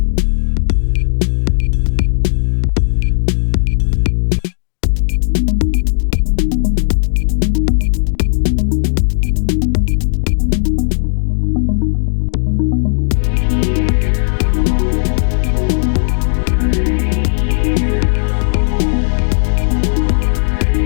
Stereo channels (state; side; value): silent; right; digital silence